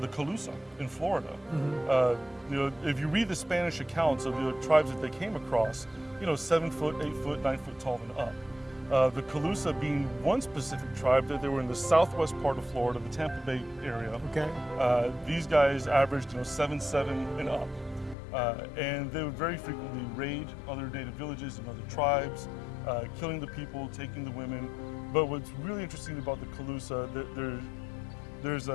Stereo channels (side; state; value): right; drops out; at 18.2 s